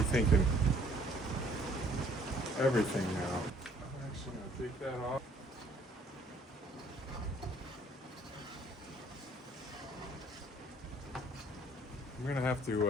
everything now. I'm actually gonna take that off. I'm gonna have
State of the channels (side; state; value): both; normal; correlation 0.59